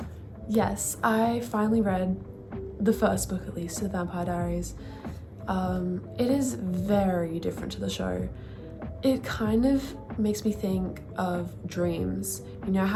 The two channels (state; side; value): identical; both; correlation 1.00